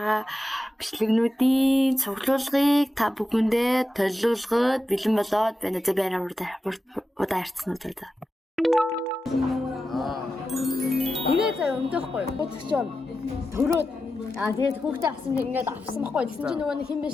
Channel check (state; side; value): normal; both; correlation 0.92